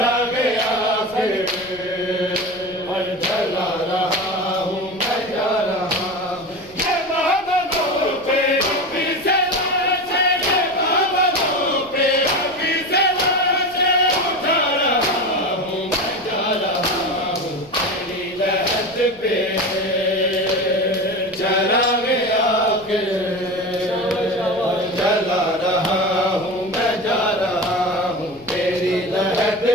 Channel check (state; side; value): noise; left; rumble, 25 dB below the sound